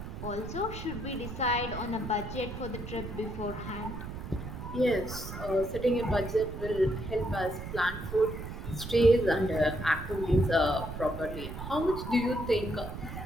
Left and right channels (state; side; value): noise; right; rumble, 8 dB below the sound